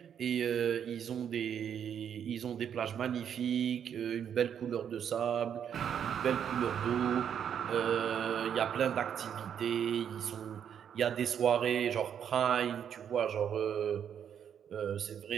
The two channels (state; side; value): quieter; left; 8.5 dB